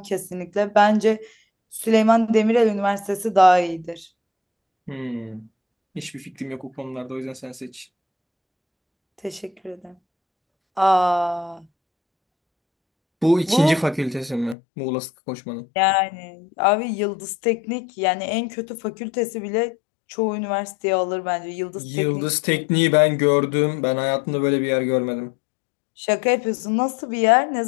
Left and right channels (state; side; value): drops out; right; at 14.6 s